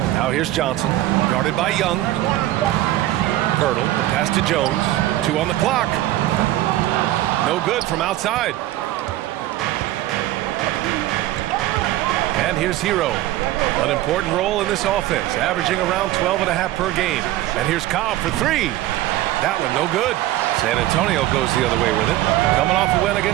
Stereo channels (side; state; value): left; quieter; 15.2 dB